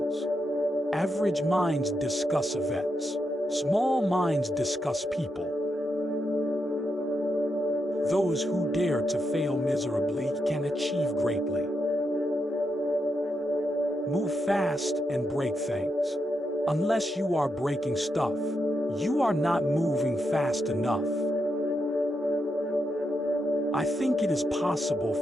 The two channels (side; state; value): both; normal; correlation 0.83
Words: Average minds discuss events. Small minds discuss people. Those who dare to fail miserably can achieve greatly. Move fast and break things. Unless you are breaking stuff, you are not moving fast enough. I think it is possible